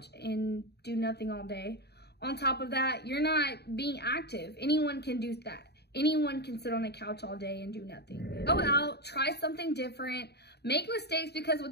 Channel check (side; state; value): right; late; 0.48 ms